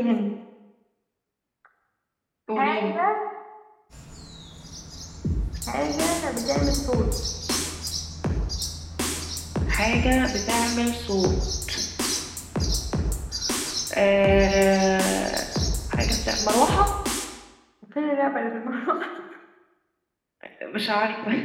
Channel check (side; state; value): both; identical; correlation 1.00